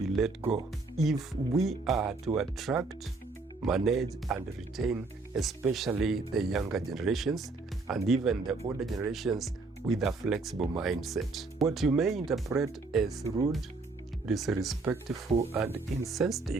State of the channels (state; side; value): quieter; left; 3.6 dB